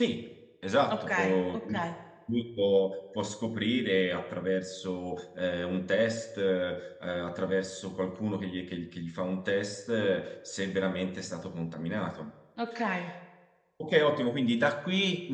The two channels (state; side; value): identical; both; correlation 1.00